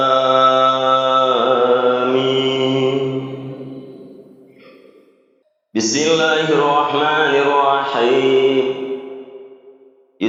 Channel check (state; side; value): identical; both; correlation 1.00